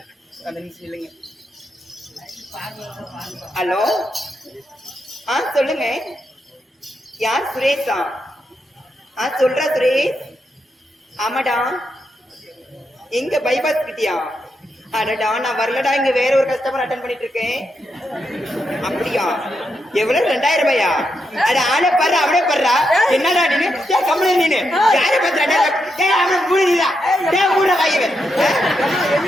அந்த நிமிஷம் இல்லைங்க ஹலோ சொல்லுங்க யார் சுரேஷா சொல்றா சுரேஷ் ஆமாடா எங்க பைபாஸ் கிட்டியா அடடா நான் வரலடா இங்க வேற ஒரு கஸ்டமர் அட்டன் பண்ணிட்டு இருக்கேன் அப்படியா எவ்வளவு 2000 ரூபாயா அட ஆளே பாரு அவனே பாருடா என்னடா நீனு கம்பெனி நீனு யாரை பத்திரா அவனை மூடிடா மூட வாய்வன்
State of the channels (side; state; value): both; normal; correlation 0.83